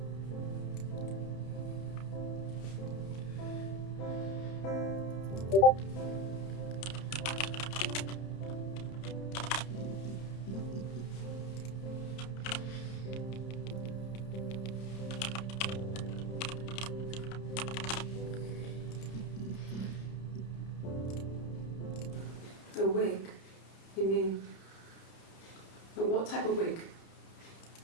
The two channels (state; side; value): late; right; 31 ms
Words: A wig? You mean... What type of wig?